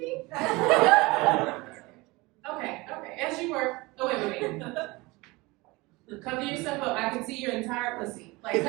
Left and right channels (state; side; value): quieter; left; 23.3 dB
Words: Okay, as you were. Oh, wait. Cover yourself up. I can see your entire pussy. Like,